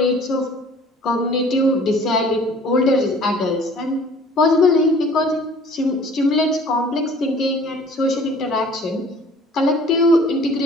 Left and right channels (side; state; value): both; normal; correlation 0.51